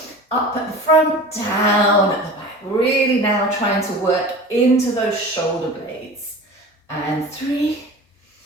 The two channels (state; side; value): normal; both; correlation 0.36